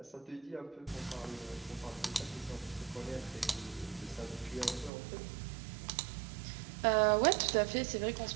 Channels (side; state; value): left; drops out; at 4.9 s